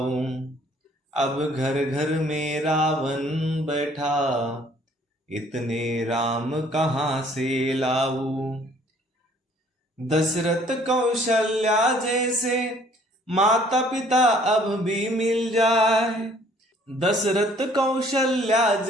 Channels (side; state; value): both; normal; correlation 0.58